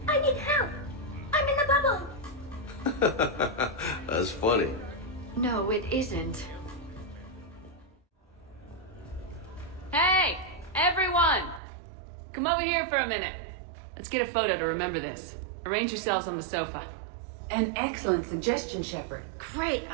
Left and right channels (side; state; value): left; drops out; at 11.6 s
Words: I need help. I'm in a bubble. That's funny. No, it isn't. Hey, everyone! Come over here for a minute. Let's get a photo to remember this. Arrange yourselves on the sofa. An excellent suggestion, Shepard. Great